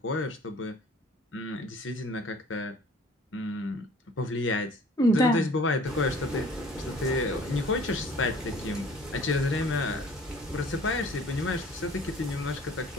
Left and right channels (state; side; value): normal; both; correlation 0.51